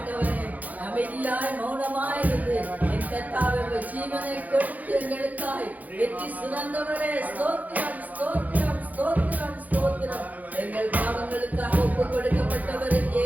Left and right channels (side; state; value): left; late; 0.079 ms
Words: அமைதியாய் மௌனமாய் இருந்து என் கர்த்தாவே ஜீவனை கொடுத்து எங்களுக்காய் வெற்றி சுரந்தவரே ஸ்தோத்திரம் ஸ்தோத்திரம் ஸ்தோத்திரம் ஸ்தோத்திரம். எங்கள் பாவங்களுக்காக ஒப்பு கொடுக்கப்பட்டவர்